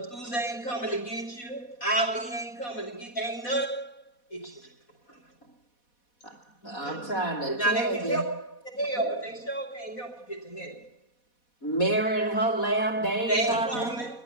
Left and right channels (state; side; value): late; right; 4.1 ms